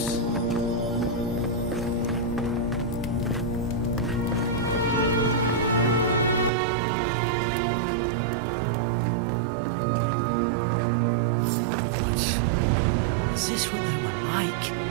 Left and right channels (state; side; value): drops out; left; at 6.5 s